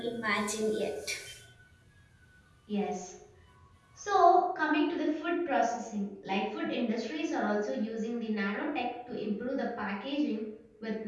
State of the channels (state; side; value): identical; both; correlation 1.00